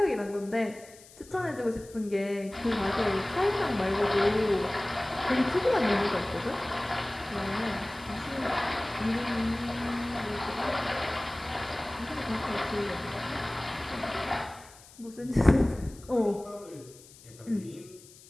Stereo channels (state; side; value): noise; left; hiss, 22 dB below the sound